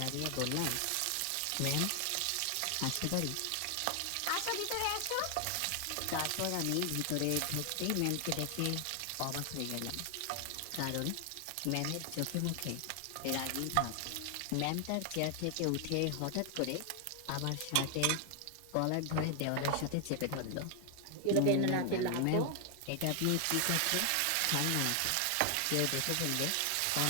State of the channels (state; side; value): different; both; correlation 0.00